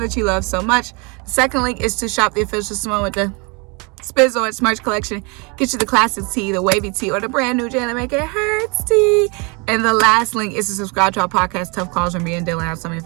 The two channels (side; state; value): left; quieter; 30.7 dB